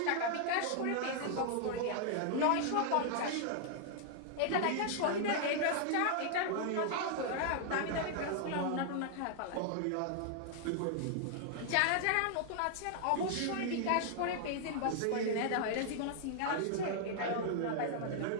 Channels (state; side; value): different; both; correlation 0.00